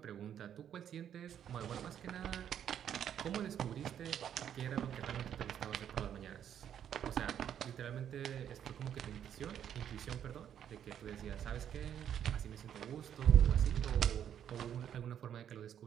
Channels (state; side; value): quieter; left; 9.5 dB